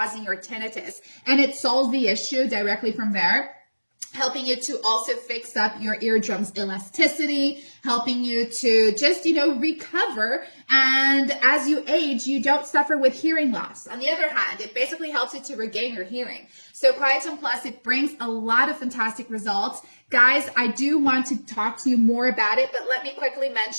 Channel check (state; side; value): inverted; both; correlation -1.00